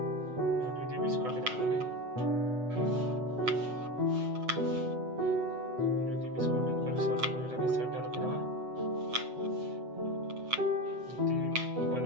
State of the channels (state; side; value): late; left; 8.0 ms